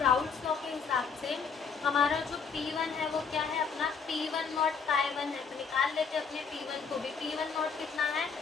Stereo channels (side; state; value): right; quieter; 5.7 dB